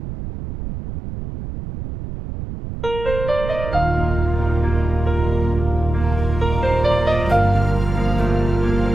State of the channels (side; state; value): right; noise; rumble, 7 dB below the sound